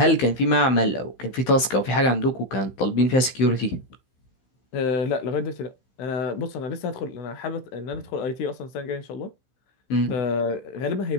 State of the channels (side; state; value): right; late; 16 ms